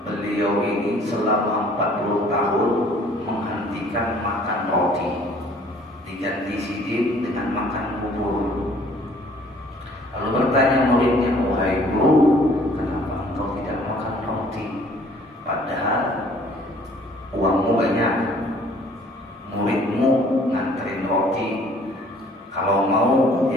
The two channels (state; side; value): normal; both; correlation 0.56